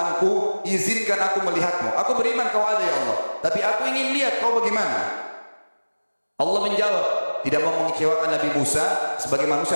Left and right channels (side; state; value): both; inverted; correlation -1.00